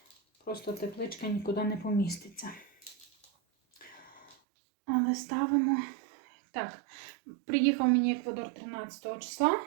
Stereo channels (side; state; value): left; drops out; at 4.4 s